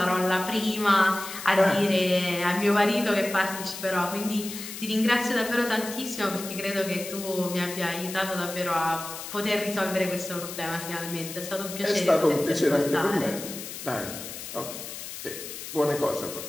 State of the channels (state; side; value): noise; left; hiss, 10 dB below the sound